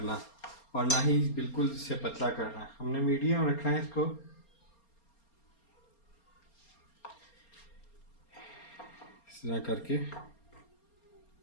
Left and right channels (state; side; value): late; right; 4.3 ms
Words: और ना ही बिल्कुल इससे पतला करना है। हमने मीडियम रखना है इसको। इस तरह करके इस